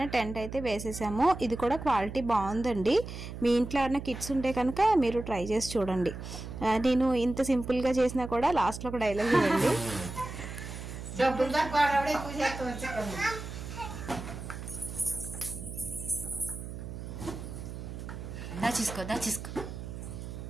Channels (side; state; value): right; noise; hum, 9 dB below the sound